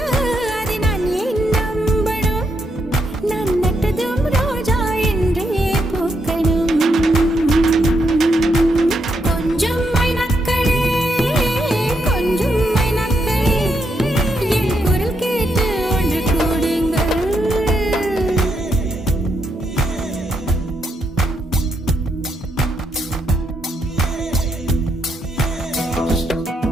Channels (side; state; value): both; normal; correlation 0.79